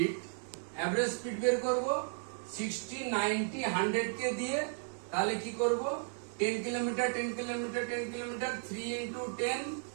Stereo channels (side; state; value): left; silent; 55 dB below the other